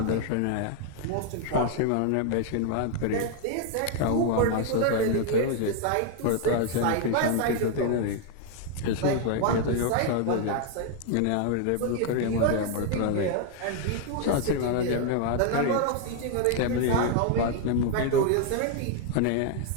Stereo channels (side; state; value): both; different; correlation 0.00